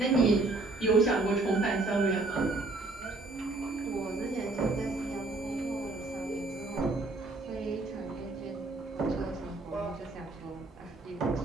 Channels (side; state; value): left; quieter; 3.2 dB